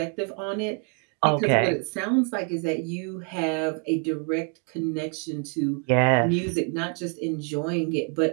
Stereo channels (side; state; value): left; quieter; 37.7 dB